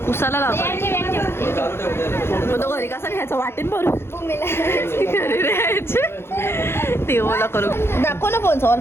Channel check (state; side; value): late; right; 0.12 ms